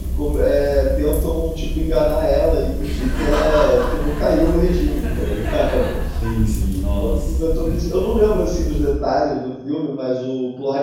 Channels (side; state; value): both; identical; correlation 1.00